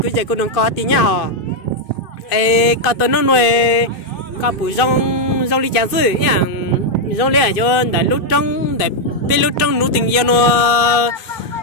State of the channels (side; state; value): right; late; 2.5 ms